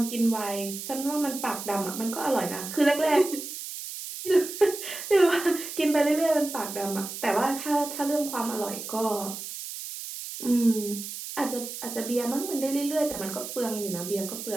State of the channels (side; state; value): right; noise; hiss, 8 dB below the sound